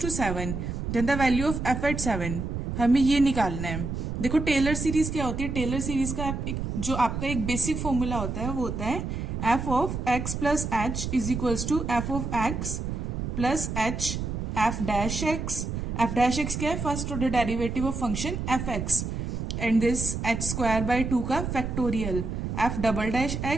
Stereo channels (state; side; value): noise; right; rumble, 4 dB below the sound